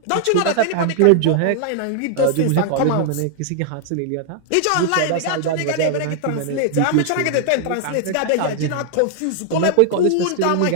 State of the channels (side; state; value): both; different; correlation 0.00